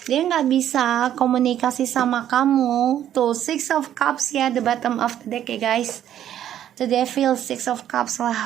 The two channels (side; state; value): left; quieter; 11.0 dB